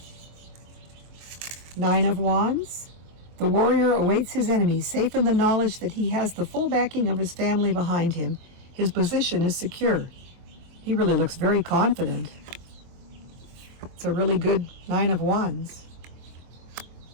Nine of Wands. The warrior awaits his enemy, safe in the knowledge that he has the full backing of his family behind him. His position is secure. He really looks very confident. It's a really good Nine of Wands.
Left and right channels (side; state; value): left; late; 23 ms